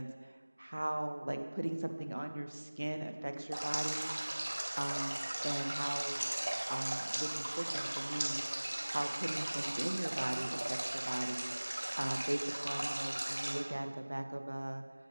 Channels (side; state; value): both; inverted; correlation -1.00